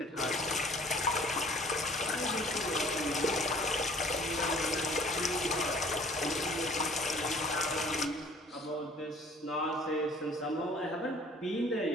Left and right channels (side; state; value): both; normal; correlation 0.54